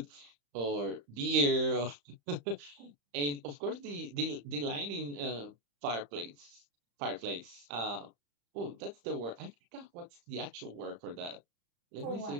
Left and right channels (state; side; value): late; left; 35 ms